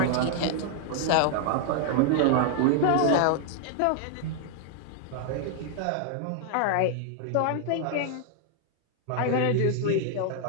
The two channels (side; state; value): both; different; correlation 0.00